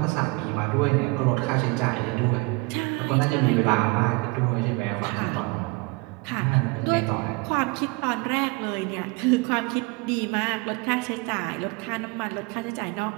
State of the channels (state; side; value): quieter; left; 27.4 dB